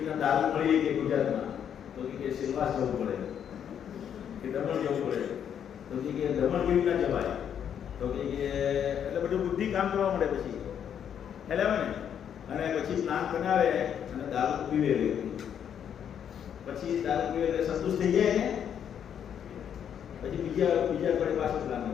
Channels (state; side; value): quieter; right; 8.8 dB